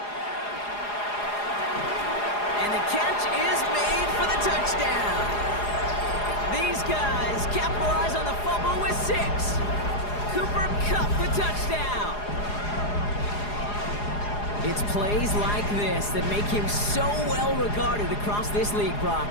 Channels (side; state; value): right; late; 4.8 ms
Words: And the catch is made for the touchdown. These guys capitalize on the fumble with 6. Cooper Kupp the touchdown. It's plays like this that make him so well regarded across this league, Brock.